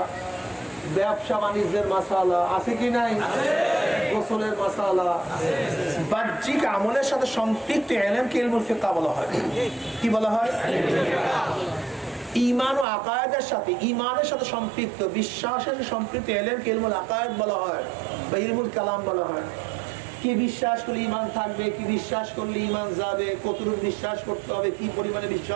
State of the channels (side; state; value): left; drops out; at 12.9 s